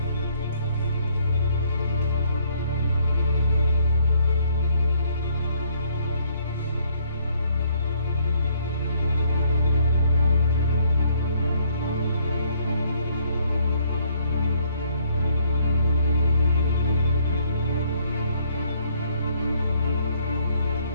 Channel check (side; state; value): both; inverted; correlation -0.66